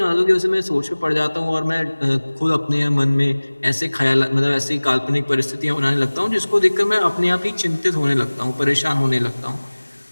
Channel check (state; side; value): inverted; both; correlation -1.00